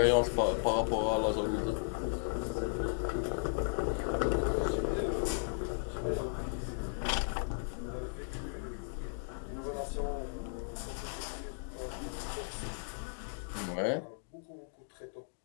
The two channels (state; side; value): silent; right; digital silence